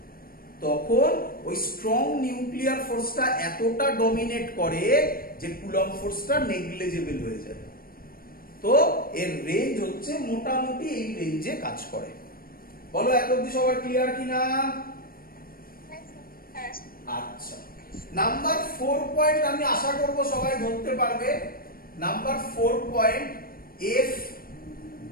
তখন ওই স্ট্রং নিউক্লিয়ার ফোর্সটা এতটা ডমিনেট করে যে কুলম্ব ফোর্সটা নেগলিজেবল হয়ে যায়। তো এর রেঞ্জ হচ্ছে মোটামুটি এই রেঞ্জে কাজ করে। বলো এত অবধি সবার ক্লিয়ার কিনা? হ্যাঁ। আচ্ছা নাম্বার 4 পয়েন্ট আমি আশা করব সবাই ধরতে পারবে। Number 4 point, F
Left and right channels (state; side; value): late; right; 0.43 ms